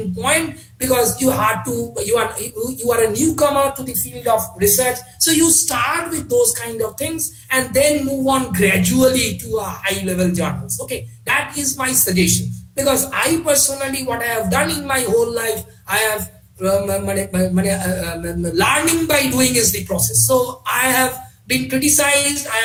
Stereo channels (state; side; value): identical; both; correlation 1.00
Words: point, because you are a newcomer to the field of research. So you start with those kind of things and then move on gradually to a high level journals. Okay, that is my suggestion, because I personally, what I have done in my whole life, I have learning by doing is the process. So I have been criticized. I